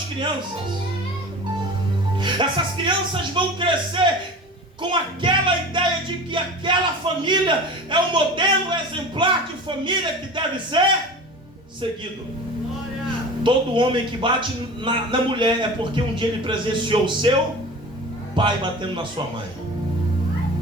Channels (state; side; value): normal; both; correlation 0.36